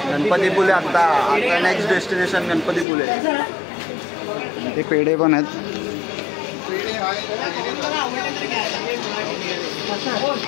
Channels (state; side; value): drops out; right; at 2.9 s